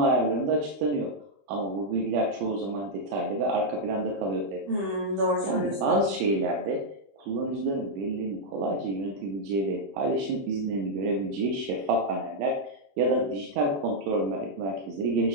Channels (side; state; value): left; late; 20 ms